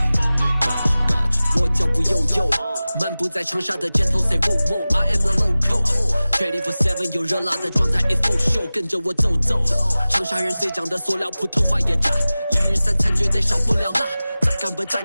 我脚步悠悠，漫步在长沙的街头 ，Say whoa whoa，I am the local。24/7有热辣的状态 ，It's full show， 跟着我走走。长沙人最讲的塑料，普通话也炸，一日三餐绝对少不了辣。再干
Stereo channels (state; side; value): inverted; both; correlation -0.97